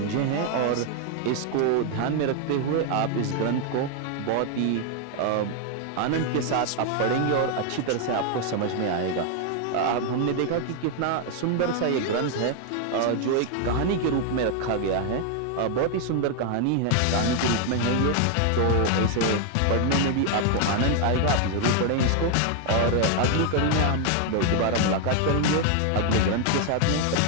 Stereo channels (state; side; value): different; both; correlation 0.00